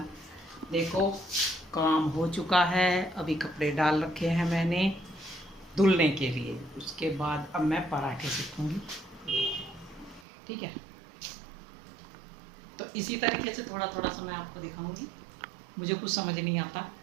देखो काम हो चुका है, अभी कपड़े डाल रखे हैं मैंने धुलने के लिए। उसके बाद अब मैं पराठे सेकूंगी, ठीक है। तो इसी तरीके से थोड़ा थोड़ा सा मैं आपको दिखाऊंगी। मुझे कुछ समझ नहीं आता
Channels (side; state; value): left; drops out; at 10.2 s